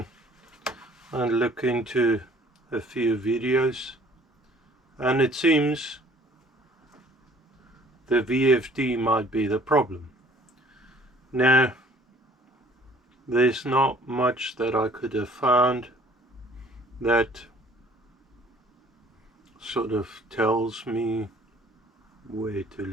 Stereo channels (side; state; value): both; normal; correlation 0.55